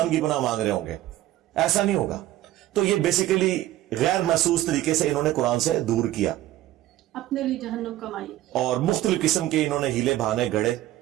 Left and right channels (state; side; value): quieter; left; 14.6 dB